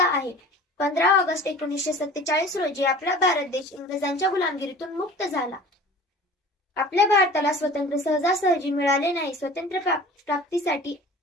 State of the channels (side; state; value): both; normal; correlation 0.43